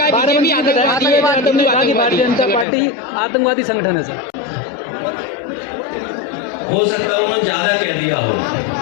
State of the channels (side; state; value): right; drops out; at 2.7 s